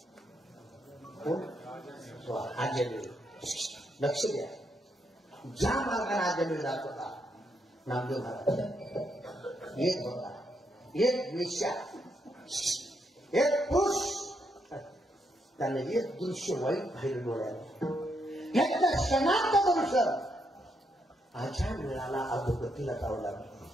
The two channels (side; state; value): both; normal; correlation 0.78